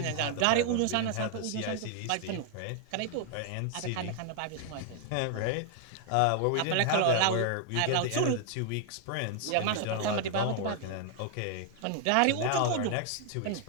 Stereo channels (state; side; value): different; both; correlation 0.00